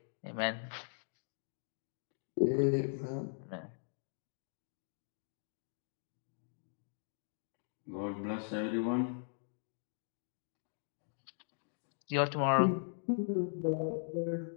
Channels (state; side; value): silent; right; digital silence